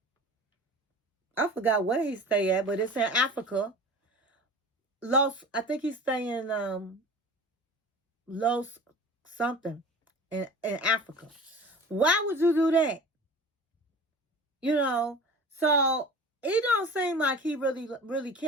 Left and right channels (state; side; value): normal; both; correlation 0.38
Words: I forgot where he stay at, but it's in Africa. I think he's staying Los something in Africa. Why would you do that? You know, so he don't seem like he really